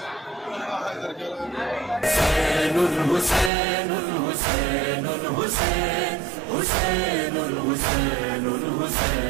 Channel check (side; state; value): left; drops out; at 3.5 s